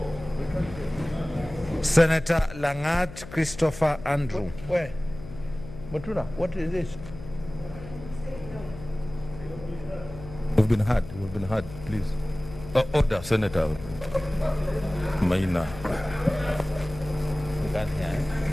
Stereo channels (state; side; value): noise; left; hum, 14 dB below the sound